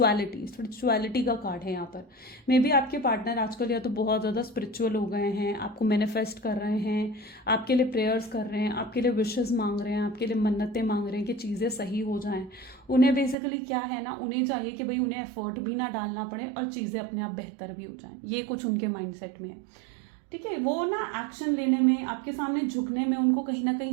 का कार्ड है यहाँ पर। मे बी आपके पार्टनर आजकल या तो बहुत ज़्यादा स्पिरिचुअल हो गए हैं, आपको मैनिफेस्ट कर रहे हैं, आपके लिए प्रेयर्स कर रहे हैं, आपके लिए विशेस मांग रहे हैं, आपके लिए मन्नतें मांग रहे हैं कि चीज़ें सही हो जाएं। उन्हें बेसिकली क्या है ना, उन्हें चाहिए कि भाई उन्हें एफर्ट भी ना डालना पड़े और चीज़ें अपने आप बेहतर भी हो जाएं। ये कुछ उनके माइंडसेट में है, ठीक है। वो ना एक्शन लेने में, आपके सामने झुकने में उनको कहीं ना कहीं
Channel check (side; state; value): left; drops out; at 13.4 s